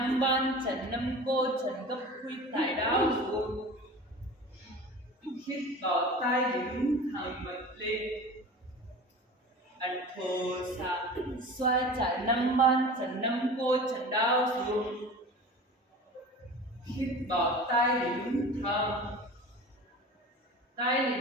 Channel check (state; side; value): normal; both; correlation 0.36